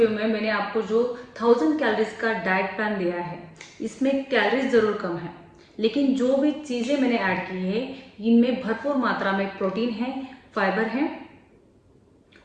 में मैंने आपको जो 1000 कैलोरीज का डाइट प्लान दिया है, इसमें कैलोरीज ज़रूर कम है, लेकिन जो भी चीज़ें मैंने ऐड की है इनमें भरपूर मात्रा में प्रोटीन है, फाइबर है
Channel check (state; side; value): identical; both; correlation 1.00